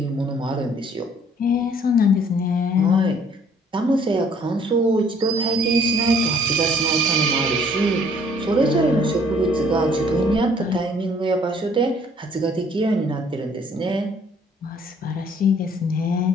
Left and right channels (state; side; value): normal; both; correlation 0.60